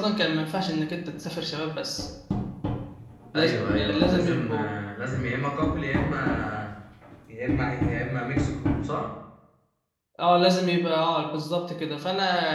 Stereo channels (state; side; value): identical; both; correlation 1.00